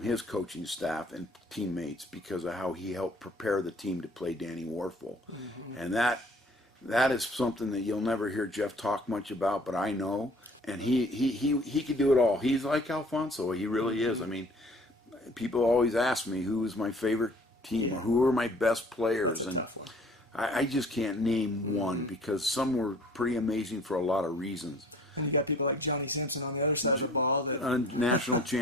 his coaching staff and teammates because of how he helped prepare the team to play Danny Warfel. Mm-hmm. And that is something that you'll never hear Jeff talk much about, but I know. And he could do it all. He's like Alfonso. He really is. I mean, people always ask me who is my favorite team or who are my best players. That's a tough one. I just can't name one because some were pretty amazing for a lot of reasons. And you got people like Johnny Simpson on the other side of the ball. That a national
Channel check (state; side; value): normal; both; correlation 0.52